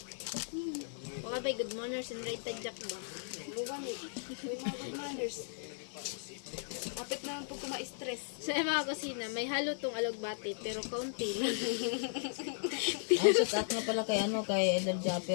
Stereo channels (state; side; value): silent; right; digital silence